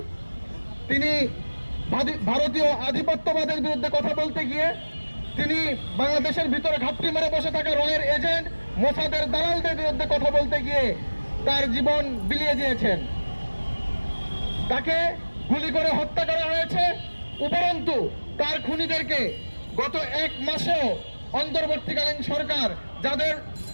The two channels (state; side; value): inverted; both; correlation -1.00